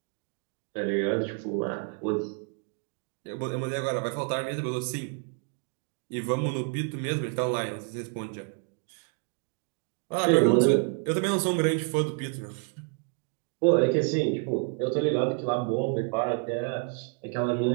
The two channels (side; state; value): left; quieter; 38.4 dB